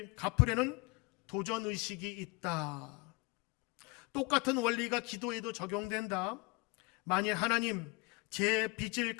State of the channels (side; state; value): right; quieter; 27.1 dB